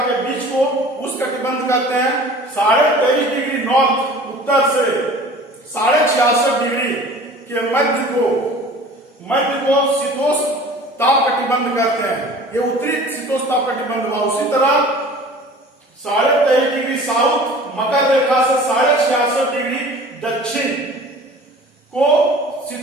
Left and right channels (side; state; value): both; normal; correlation 0.44